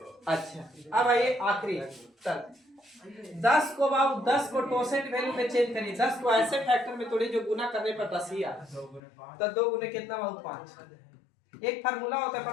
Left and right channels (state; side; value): drops out; right; at 9.0 s